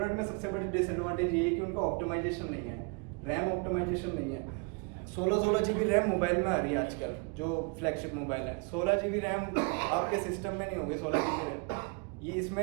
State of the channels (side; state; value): left; quieter; 32.8 dB